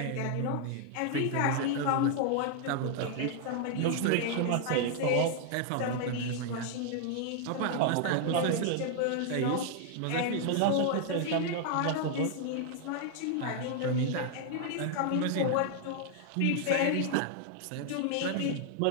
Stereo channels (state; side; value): different; both; correlation 0.00